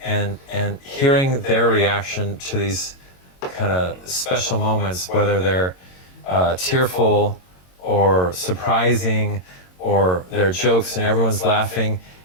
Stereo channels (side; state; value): right; late; 22 ms